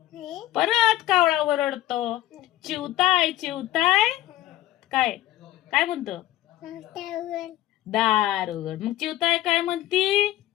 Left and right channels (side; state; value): right; quieter; 14.8 dB